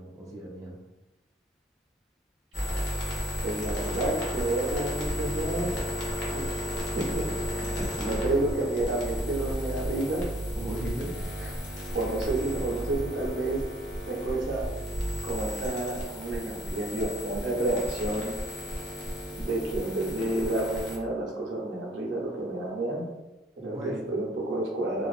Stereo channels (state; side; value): normal; both; correlation 0.59